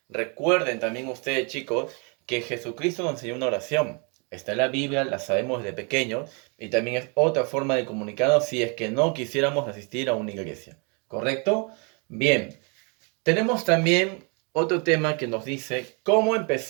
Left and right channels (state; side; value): quieter; left; 34.2 dB